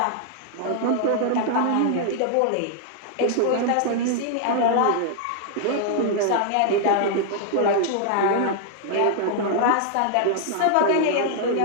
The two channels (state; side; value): different; both; correlation -0.01